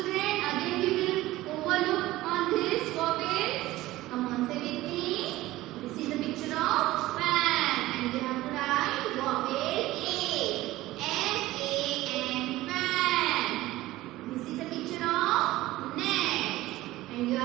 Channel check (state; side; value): quieter; left; 17.1 dB